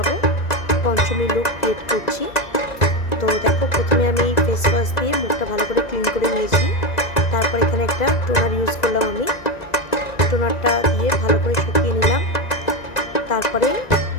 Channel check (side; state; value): right; late; 1.9 ms